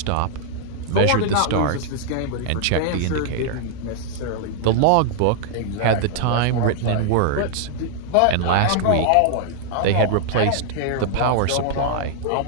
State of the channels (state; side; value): different; both; correlation -0.01